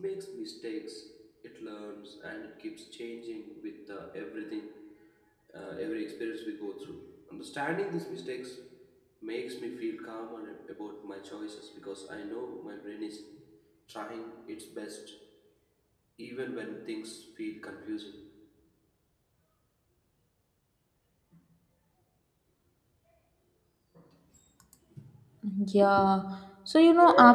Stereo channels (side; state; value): both; identical; correlation 1.00